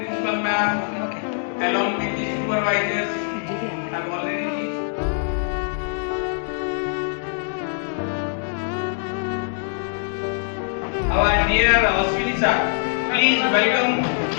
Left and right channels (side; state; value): right; silent; 63 dB below the other